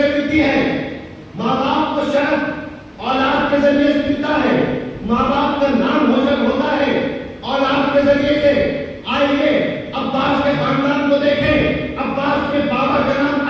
ملتی ہے، ماں باپ کو شرف اولاد کے ذریعے سے ملتا ہے، ماں باپ کا نام روشن ہوتا ہے اولاد کے ذریعے سے. آئیے عباس کے خاندان کو دیکھیں. عباس کے بابا کا نام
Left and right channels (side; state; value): both; identical; correlation 1.00